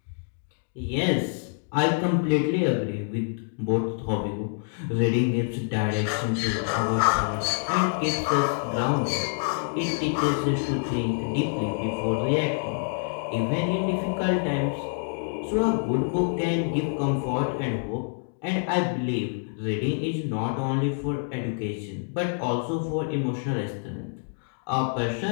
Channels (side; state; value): right; silent; 60 dB below the other